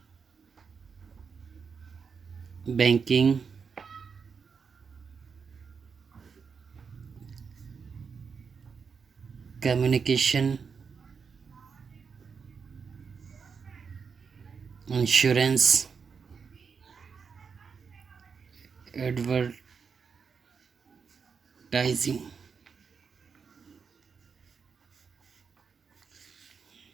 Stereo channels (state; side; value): quieter; left; 5.9 dB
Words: banking, communication, insurance, advertising.